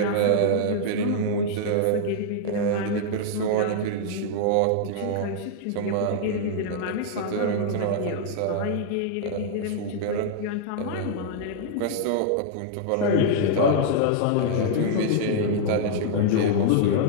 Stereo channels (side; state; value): both; different; correlation -0.01